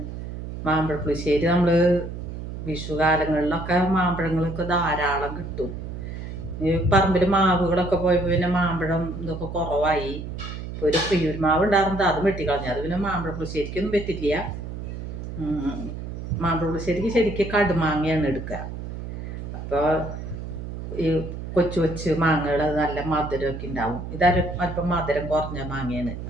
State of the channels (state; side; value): noise; right; hum, 8 dB below the sound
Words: മാമ്പഴ പുളിശ്ശേരി. നമ്മൾ വിഷുകാലങ്ങളിലൊക്കെ മാമ്പഴങ്ങളൊക്കെ ധാരാളം കിട്ടും. ഈ പറമ്പിൽ മാവുകളൊക്കെ പോയപ്പോൾ പിന്നെ മാമ്പഴം ഇതൊക്കെ കുറവായി. ഇപ്പോൾ ഒരു പ്രിയൂർ മാവ് ഉണ്ടായിരുന്നത് അത് വെട്ടിക്കളഞ്ഞു. അത് പിന്നെ മാമ്പഴ പുളിശ്ശേരിക്കൊന്നും പറ്റില്ല. മാമ്പഴ പുളിശ്ശേരിക്ക് ശരിക്കും കടുമാങ്ങയാണ് എടുക്കുക. അപ്പോൾ ഈ കൊച്ചു കൊച്ചു മാങ്ങകൾ നല്ല മധുരമൊക്കെ ഉണ്ടാവും. അല്പം മധുരം കുറഞ്ഞ മാങ്ങയാണ്.